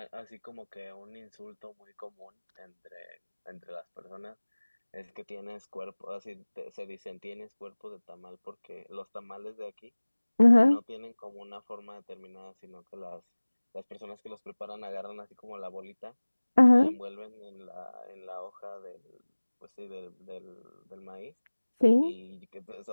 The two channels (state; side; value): inverted; both; correlation -1.00